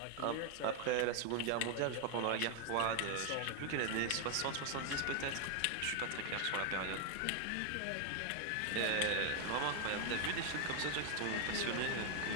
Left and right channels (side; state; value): both; different; correlation 0.01